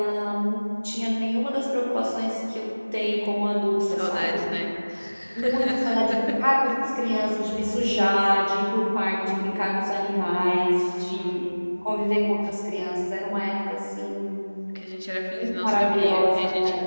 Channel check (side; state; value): both; inverted; correlation -1.00